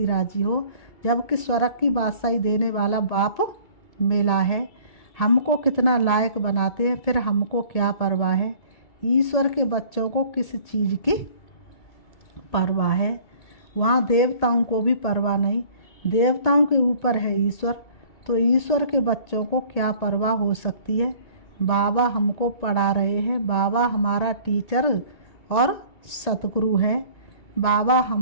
राजी हो, जबकि स्वर्ग की बादशाही देने वाला बाप मिला है। हमको कितना लायक बनाते हैं, फिर हमको क्या परवाह है। ईश्वर के बच्चों को किस चीज़ की परवाह है? वहाँ देवताओं को भी परवाह नहीं। देवताओं के ऊपर है ईश्वर, तो ईश्वर के बच्चों को क्या परवाह हो सकती है। बाबा हमको पढ़ा रहे हैं, बाबा हमारा टीचर और सतगुरु है। बाबा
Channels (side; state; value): right; late; 1.8 ms